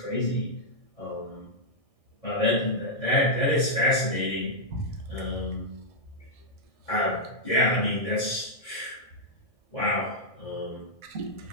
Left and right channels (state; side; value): late; right; 1.6 ms